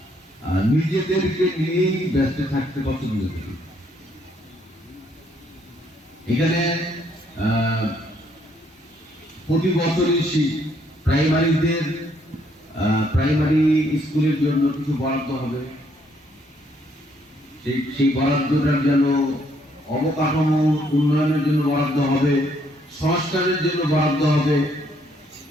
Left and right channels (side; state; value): both; normal; correlation 0.69